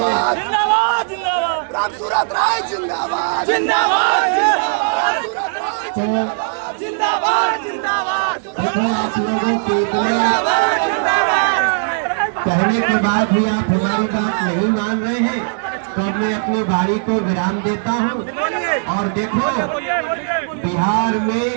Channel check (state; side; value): silent; left; 67 dB below the other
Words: जिंदाबाद जिंदाबाद जिंदाबाद जिंदाबाद जिंदाबाद। देखो आप लोगों के कहने के बाद भी आप हमारी बात नहीं मान रहे हैं, तो मैं अपनी बारी को विराम देता हूं। और देखो बिहार में